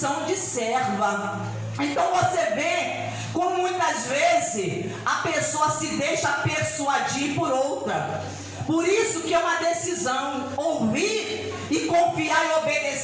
de serva. Então você vê como muitas vezes a pessoa se deixa persuadir por outra. Por isso que é uma decisão. Ouvir e confiar e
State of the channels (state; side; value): identical; both; correlation 1.00